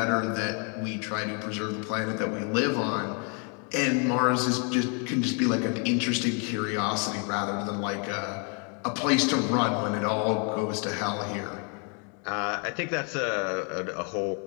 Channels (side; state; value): right; quieter; 37.8 dB